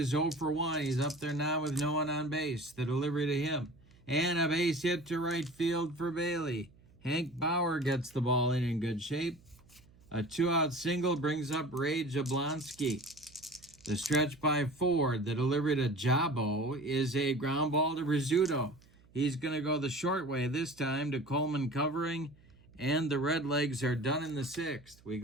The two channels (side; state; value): right; noise; hum, 27 dB below the sound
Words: 0 for 1. He's up there now with no one on base. The delivery to him. And a base hit to right field for Bailey. Hank Bauer gets the ball in good shape. A 2-out single brings up Ray Jablonski. The stretch by Ford. The delivery to Jabo is a ground ball to Rizzuto. He's going to go the short way this time to Coleman covering. And the Redlegs are done in the 6th. We